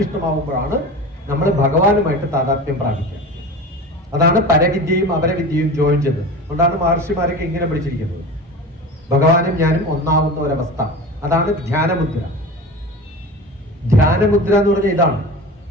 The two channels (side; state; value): both; normal; correlation 0.32